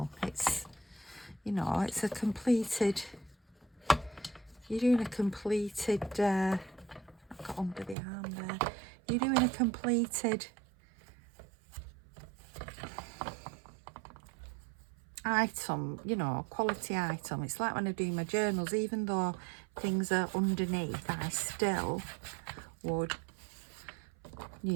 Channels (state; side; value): drops out; left; at 8.0 s